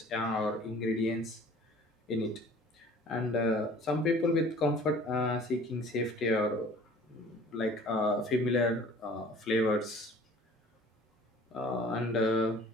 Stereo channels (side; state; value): both; normal; correlation 0.49